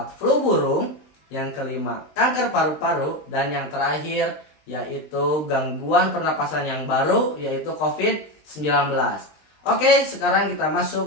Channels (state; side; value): late; right; 20 ms